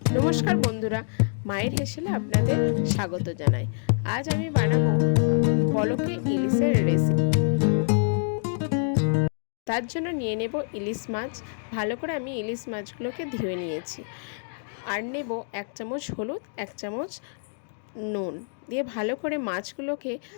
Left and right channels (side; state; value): right; silent; digital silence